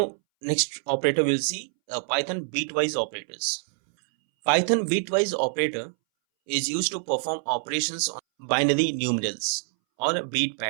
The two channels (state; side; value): silent; left; 61 dB below the other